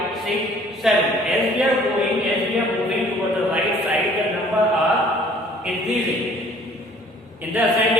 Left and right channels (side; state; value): both; normal; correlation 0.55